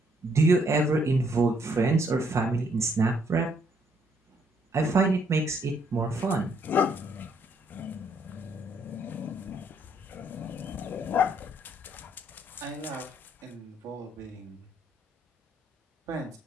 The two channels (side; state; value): both; normal; correlation 0.70